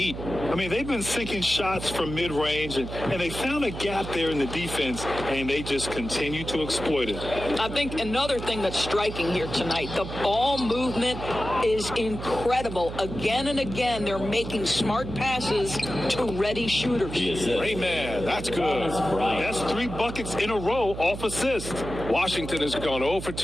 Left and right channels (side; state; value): right; noise; hum, 8 dB below the sound